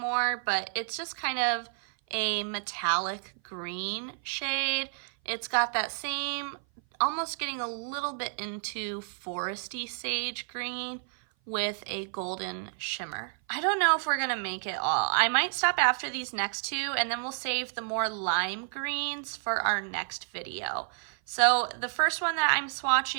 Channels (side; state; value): left; silent; 55 dB below the other